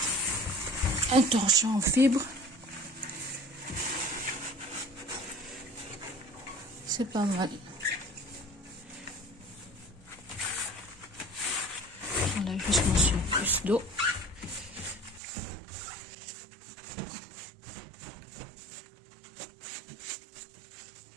un torchon en fibre, c'est pas mal. J'enlève juste mon surplus d'eau.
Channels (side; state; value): left; drops out; at 15.2 s